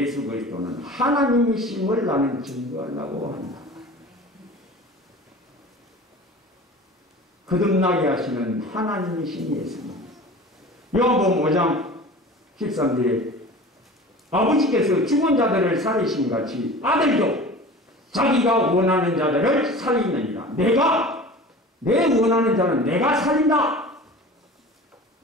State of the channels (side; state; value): both; normal; correlation 0.39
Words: 그리스도는 하나님이심을 나는 증거하려고 한다. 거듭나게 하시는 하나님이신 예수님. 요한복음 5장 13절에 아버지께서 죽은 자들을 살리신 같이 아들도 자기가 원하는 자들을 살리느니라. 내 원하는 자는 내가 살린다.